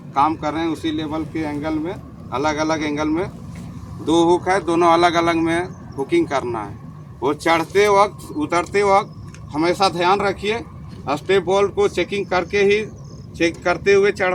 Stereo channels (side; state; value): both; identical; correlation 1.00